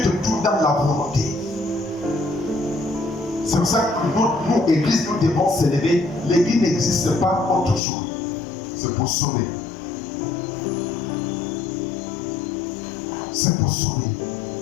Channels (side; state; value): right; drops out; at 7.8 s